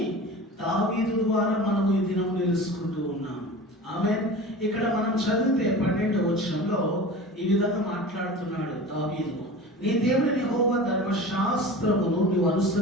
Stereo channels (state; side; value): normal; both; correlation 0.35